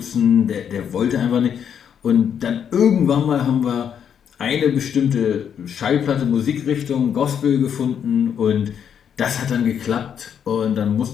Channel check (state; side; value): quieter; right; 8.2 dB